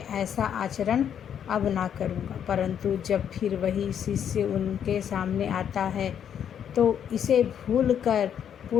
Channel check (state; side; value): quieter; right; 8.8 dB